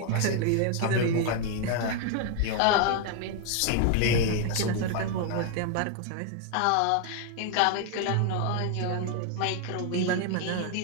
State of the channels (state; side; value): different; both; correlation 0.00